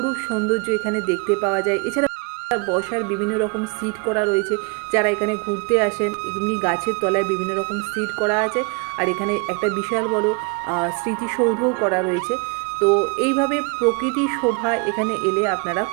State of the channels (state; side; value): quieter; left; 33.2 dB